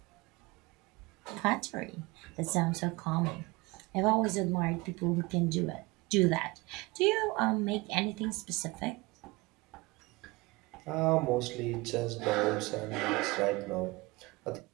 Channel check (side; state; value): left; quieter; 23.4 dB